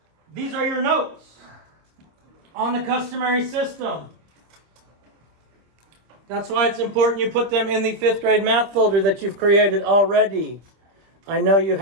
These are your notes on the customary system. That's why it's important you put them in the 5th grade math folder that you've created already. I know you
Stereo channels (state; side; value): late; left; 25 ms